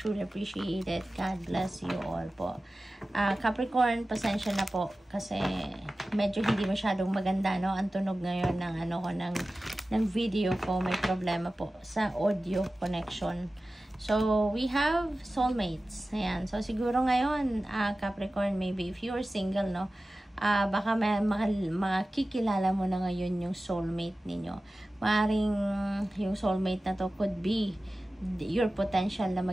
appreciate it. God bless you all po. Capricorn, pasensya na po kasi medyo hindi masyadong maganda, no? Ang tunog ngayon ng ng video ko, may problema po sa audio connection. So, we have soulmates. Ayan. So, siguro ngayon, Capricorn, maybe if you're single, no, baka makikilala mo na ngayon yung soulmate ninyo. Maaring yung soulmate na to could be your potential na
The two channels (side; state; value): both; normal; correlation 0.96